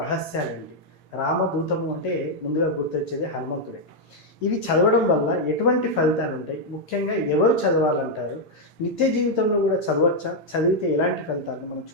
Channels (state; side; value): late; right; 8.8 ms